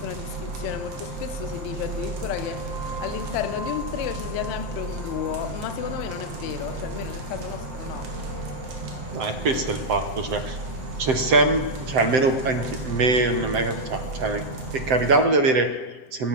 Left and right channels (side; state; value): left; late; 7.8 ms